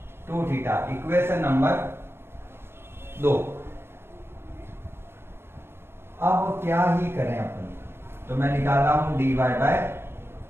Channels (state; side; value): late; left; 0.11 ms